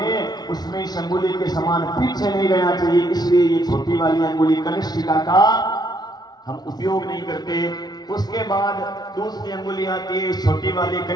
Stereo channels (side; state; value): right; late; 0.19 ms